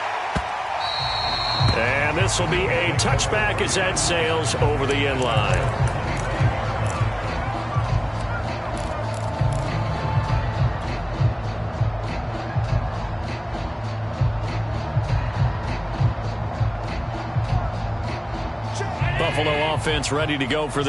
And this will be a touchback as that sails over the end line. Buffalo offense ready to go for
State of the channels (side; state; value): both; identical; correlation 1.00